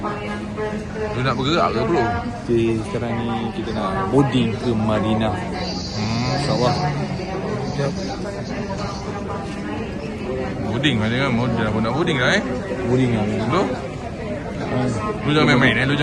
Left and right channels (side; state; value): both; identical; correlation 1.00